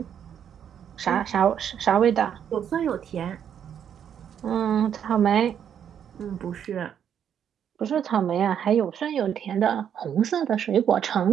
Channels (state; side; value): quieter; left; 8.8 dB